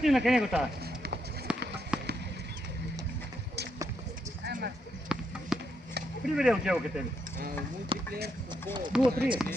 на къде го тази. Приведе от тялката ми.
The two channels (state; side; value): normal; both; correlation 0.79